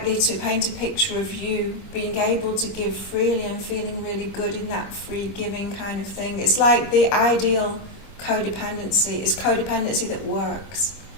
to paint a picture of you being able to give freely and feeling really good in that free giving kind of thing. It's like the ideal codependency is codependency that works.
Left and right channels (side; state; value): right; late; 25 ms